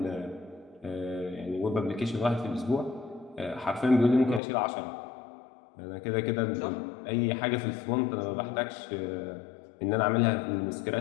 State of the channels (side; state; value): right; drops out; at 4.4 s